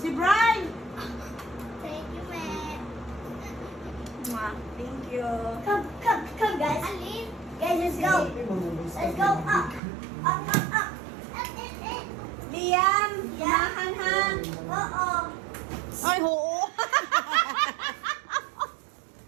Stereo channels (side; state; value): left; drops out; at 9.8 s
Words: Brian. Thank you, man. Thank you. Come, guys. Alin? Guys, let's go. Let's go up. Up. Liam, Mahanhan. Oo. Ay, oo.